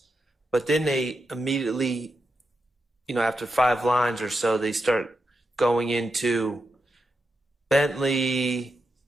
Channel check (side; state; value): both; normal; correlation 0.87